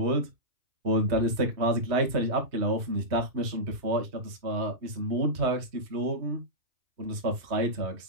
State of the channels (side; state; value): left; late; 3.2 ms